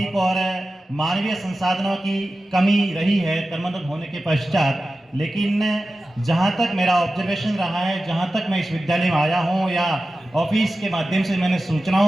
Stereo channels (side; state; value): both; normal; correlation 0.94